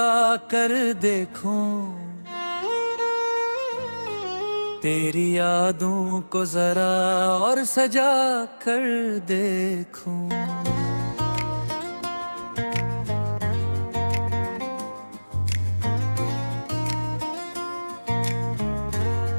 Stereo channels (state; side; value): inverted; both; correlation -1.00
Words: कर देखूं, तेरी यादों को जरा और सजा कर देखूं।